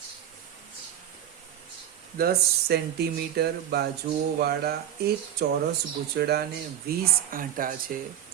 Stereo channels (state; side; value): quieter; left; 10.6 dB